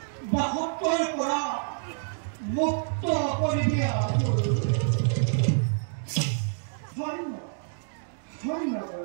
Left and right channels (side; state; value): left; silent; digital silence